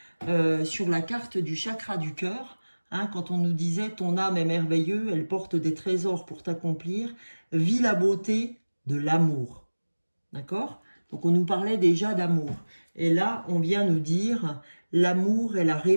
sur la carte du chakra du cœur, hein, quand on nous disait « ton âme est merveilleuse, elle porte des trésors pour t'accomplir, vis la beauté de l'amour ». D'accord? Donc on nous parlait déjà d'amour. Et là, on vient nous dire « l'amour est la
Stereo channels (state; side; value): inverted; both; correlation -1.00